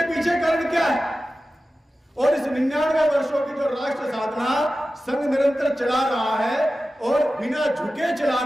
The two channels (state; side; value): normal; both; correlation 0.94